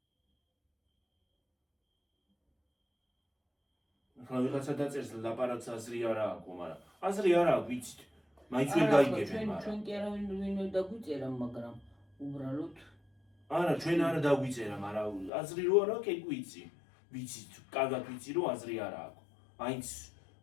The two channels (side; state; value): right; drops out; at 15.3 s